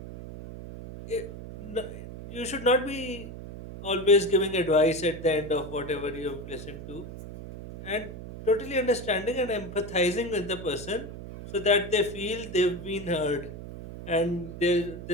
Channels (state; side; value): noise; right; hum, 11 dB below the sound